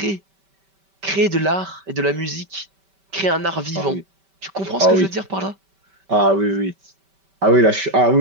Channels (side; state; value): left; late; 5.2 ms